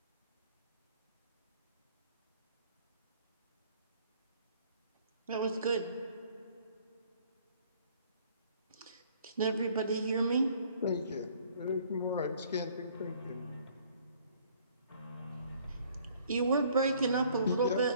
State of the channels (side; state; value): both; inverted; correlation -0.59